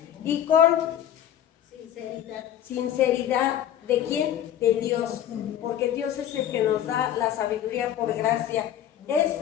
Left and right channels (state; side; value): quieter; right; 10.8 dB